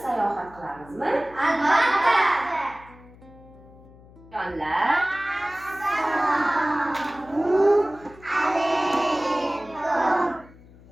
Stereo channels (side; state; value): left; noise; hum, 23 dB below the sound